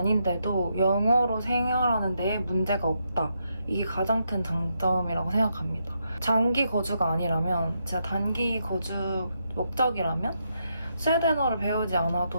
영어로 생활하는 데에 문제가 없다. 이게 가장 큰 장점이라고 생각합니다. 장기 거주가 아니라면, 제가 단기 거주 목적이라면 스웨덴어를 배우지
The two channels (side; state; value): both; inverted; correlation -0.80